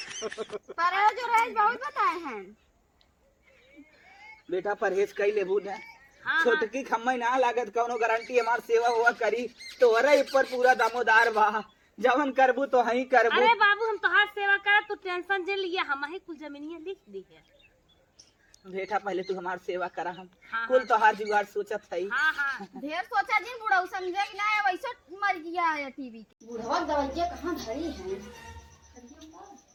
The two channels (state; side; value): identical; both; correlation 1.00